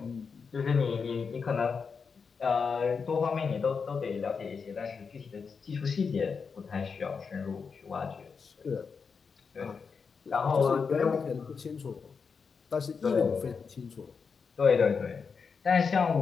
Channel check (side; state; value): right; quieter; 5.5 dB